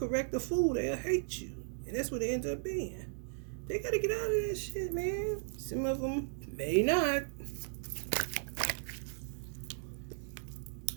the fool, they'll hate you. And that's what it ends up being. They gotta get out of that shit, man. Some of them may not.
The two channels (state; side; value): silent; left; digital silence